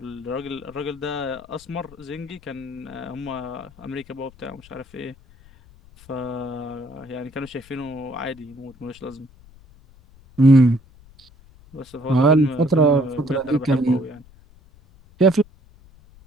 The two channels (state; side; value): noise; left; rumble, 25 dB below the sound